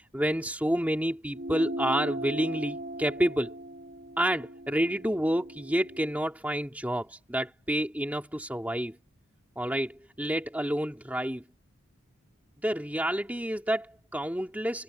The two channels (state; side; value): normal; both; correlation 0.85